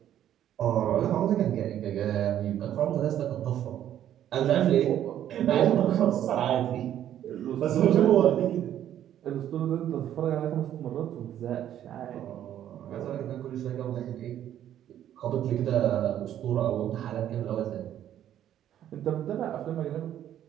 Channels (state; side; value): quieter; left; 11.1 dB